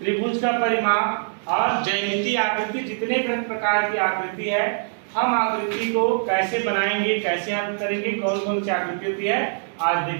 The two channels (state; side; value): silent; left; digital silence